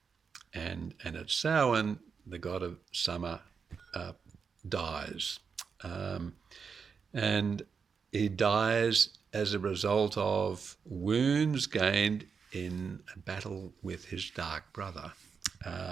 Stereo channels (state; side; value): quieter; left; 5.9 dB